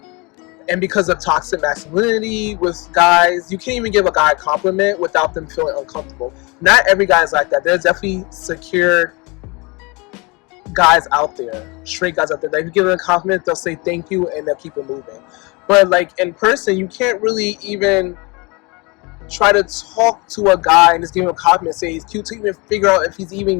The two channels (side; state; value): right; quieter; 27.5 dB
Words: and because of toxic masculinity with guys. You can't even give a guy a compliment without them feeling uncomfortable. Not every guy is like that. There's definitely secure guys out there, straight guys out there. Like, if you give them a compliment, they'll say thank you and they'll keep it moving. But like in person, you can't really even try to talk to a guy and just give him a compliment, say he's cute, to even figure out if he's